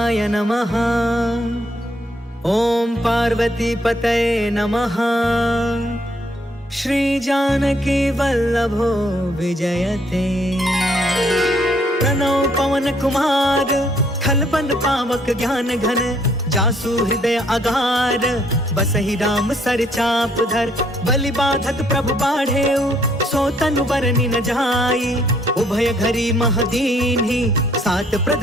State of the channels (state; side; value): normal; both; correlation 0.67